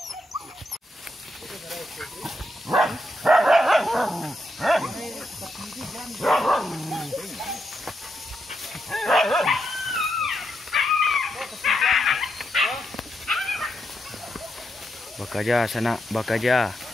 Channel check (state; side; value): normal; both; correlation 0.82